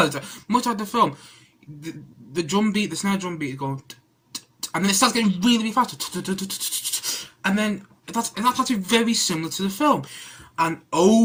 that. Much like the film, the drum beat, the snare drum beat is going, and then it starts getting really faster, and then that's actually very similar to the film. And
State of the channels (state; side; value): identical; both; correlation 1.00